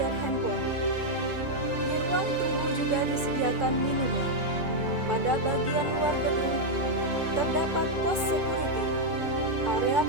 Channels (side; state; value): left; late; 2.4 ms